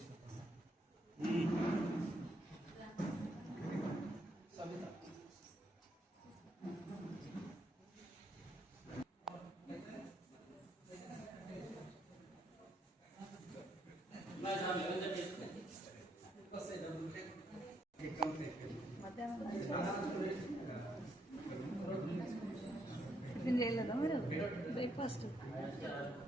టిఫిన్ చేయలేదా మీరు? బ్రేక్ఫాస్ట్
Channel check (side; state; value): both; normal; correlation 0.75